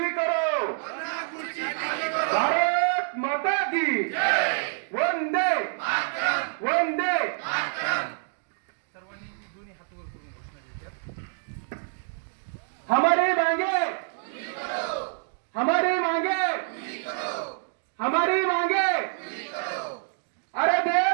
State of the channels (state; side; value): silent; left; digital silence